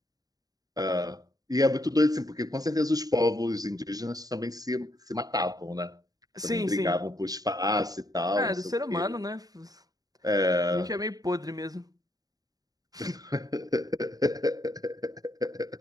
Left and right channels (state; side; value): late; left; 0.18 ms